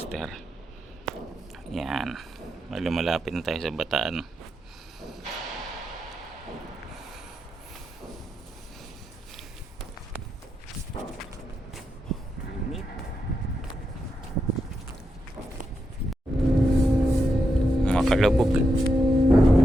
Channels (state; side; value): normal; both; correlation 0.84